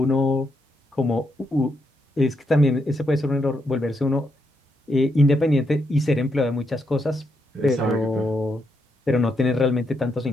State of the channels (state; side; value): normal; both; correlation 0.80